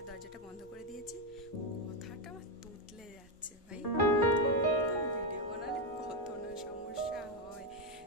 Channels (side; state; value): both; normal; correlation 0.06